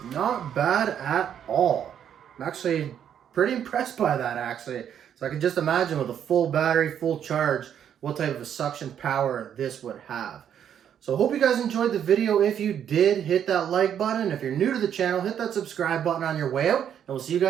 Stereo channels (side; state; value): left; quieter; 9.2 dB